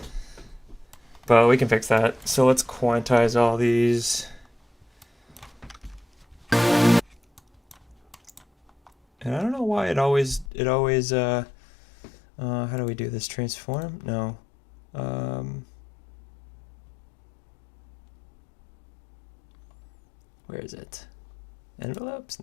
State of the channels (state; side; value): drops out; right; at 10.5 s